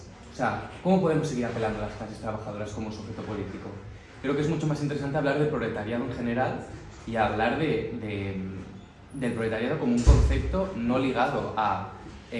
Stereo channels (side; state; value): both; identical; correlation 1.00